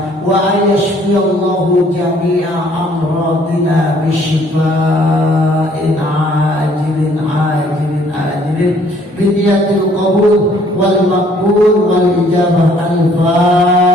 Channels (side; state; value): both; normal; correlation 0.61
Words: wa ayashfiyallahu jami'a amradina bisyifa'in ajilin biniyatil qabul wal maqbul wal ijabah